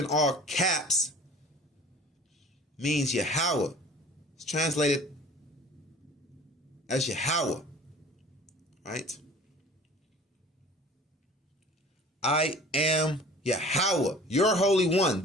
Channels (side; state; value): both; normal; correlation 0.45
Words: all caps means Yahweh. It's translated as Yahweh. Right? I am Yahweh, your Holy One,